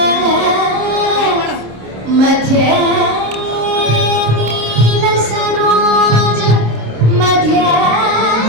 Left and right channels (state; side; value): late; left; 26 ms